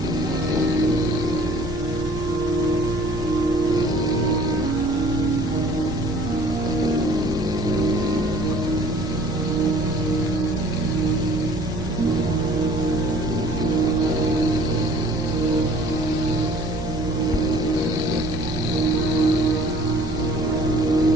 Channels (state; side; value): normal; both; correlation 0.52